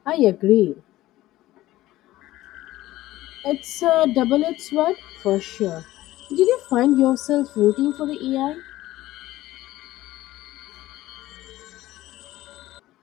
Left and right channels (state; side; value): quieter; right; 16.1 dB